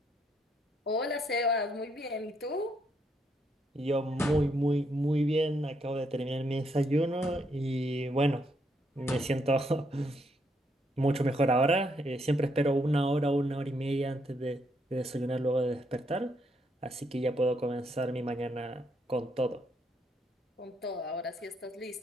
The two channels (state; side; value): normal; both; correlation 0.75